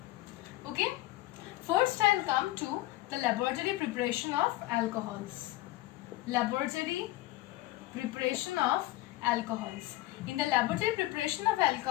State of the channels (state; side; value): quieter; right; 17.9 dB